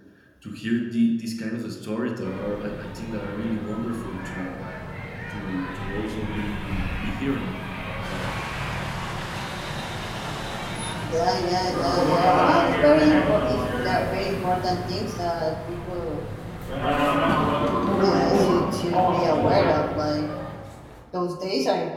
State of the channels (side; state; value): both; identical; correlation 1.00